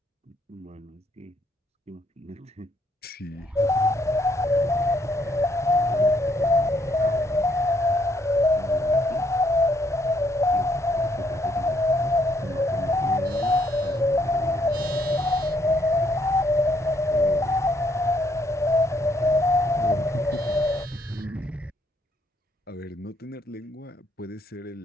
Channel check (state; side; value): normal; both; correlation 0.71